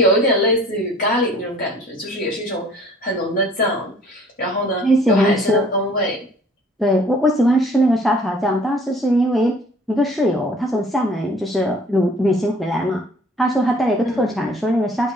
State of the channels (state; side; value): normal; both; correlation 0.53